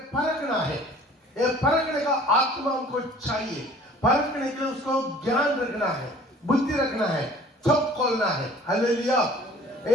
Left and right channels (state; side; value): normal; both; correlation 0.50